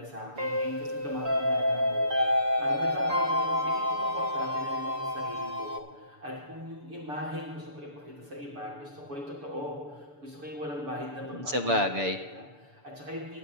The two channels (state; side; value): late; left; 6.9 ms